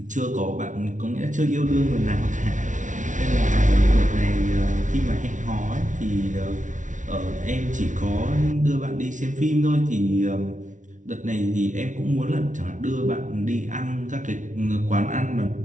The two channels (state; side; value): late; left; 0.37 ms